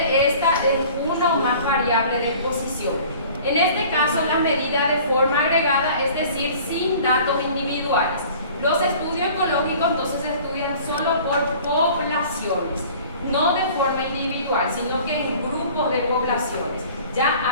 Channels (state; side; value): inverted; both; correlation -0.47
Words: esta en una o más variables de exposición. En este caso, la medida de forma agregada, es decir, sin datos individuales. Los estudios ecológicos entonces se estudian solo por poblaciones, no de forma individual, sino que en grupos de poblaciones, ya